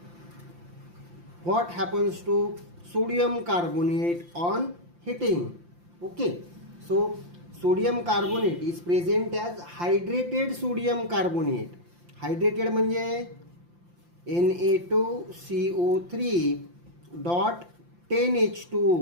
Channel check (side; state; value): left; late; 5.8 ms